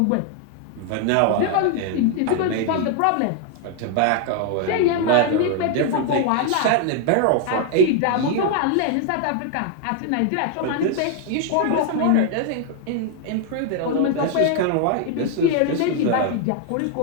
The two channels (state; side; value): different; both; correlation 0.00